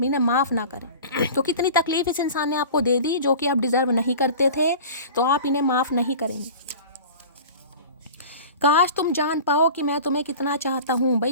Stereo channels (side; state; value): both; inverted; correlation -0.38